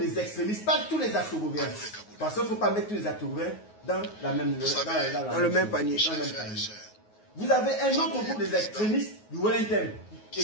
extrémistes, pas tous les atogoviens. Parce qu'il ne faut pas mettre tous les atogoviens dans le même panier. Vous avez un autre groupe des extrémistes du Wellington et qui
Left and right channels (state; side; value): late; right; 9.4 ms